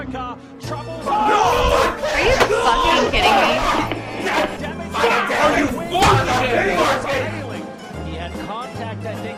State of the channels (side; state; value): both; identical; correlation 1.00